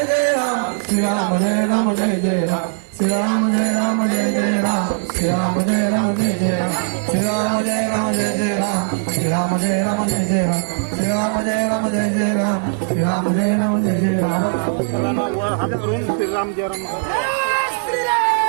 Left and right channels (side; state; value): left; silent; digital silence